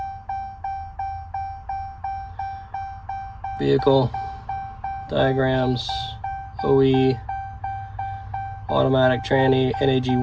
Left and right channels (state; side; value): identical; both; correlation 1.00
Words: Vehicle, diagrams, OE, automatic tranny,